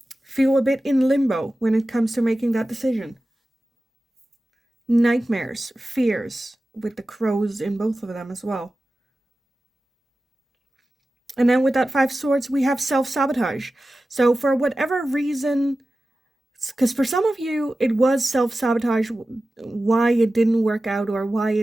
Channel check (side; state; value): both; normal; correlation 0.95